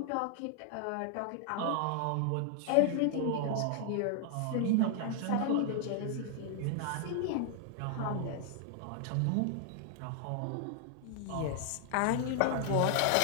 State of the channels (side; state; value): both; different; correlation 0.00